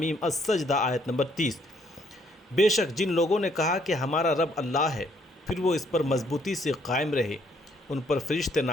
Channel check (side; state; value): both; normal; correlation 0.67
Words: السجدہ آیت نمبر 30۔ بے شک جن لوگوں نے کہا کہ ہمارا رب اللہ ہے، پھر وہ اس پر مضبوطی سے قائم رہے، ان پر فرشتے